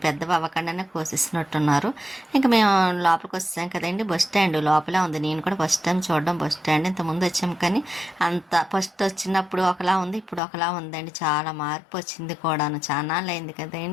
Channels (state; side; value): drops out; right; at 10.4 s